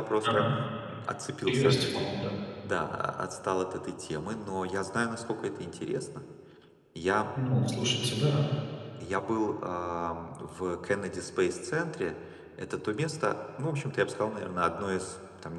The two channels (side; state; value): both; identical; correlation 1.00